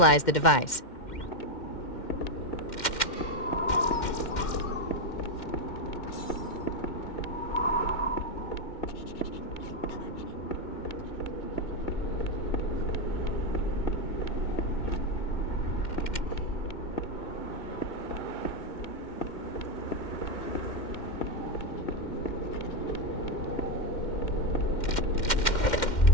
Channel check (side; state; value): right; late; 2.1 ms